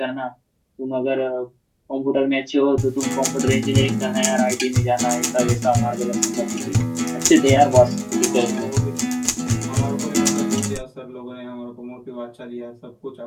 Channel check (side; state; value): both; identical; correlation 1.00